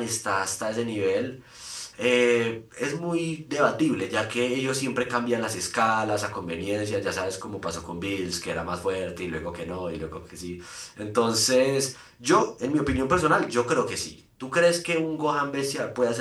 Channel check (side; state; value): both; identical; correlation 1.00